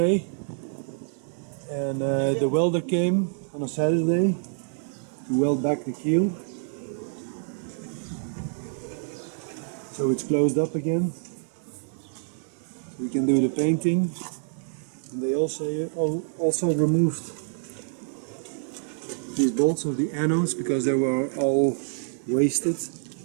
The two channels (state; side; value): silent; left; digital silence